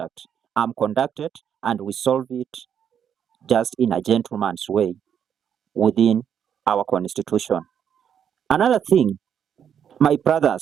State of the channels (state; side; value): quieter; left; 8.4 dB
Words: I'm conducted and we solve it just in a gentleman's way within our constitution. Another thing, my